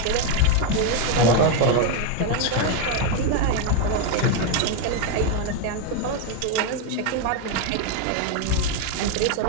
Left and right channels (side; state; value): both; different; correlation 0.01